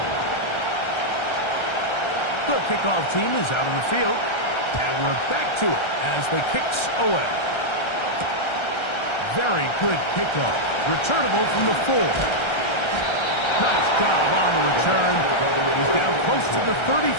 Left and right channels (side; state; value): right; late; 1.3 ms